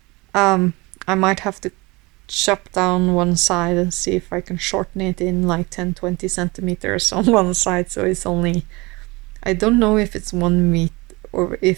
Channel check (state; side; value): quieter; left; 24.2 dB